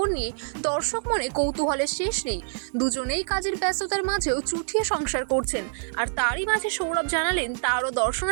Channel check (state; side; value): silent; left; digital silence